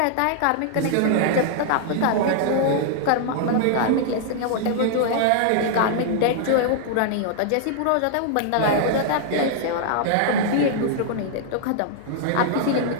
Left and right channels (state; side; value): different; both; correlation -0.01